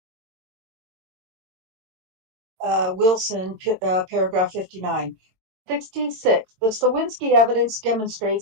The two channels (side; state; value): left; late; 22 ms